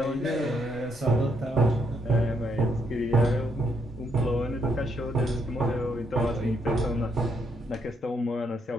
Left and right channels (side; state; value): both; normal; correlation 0.74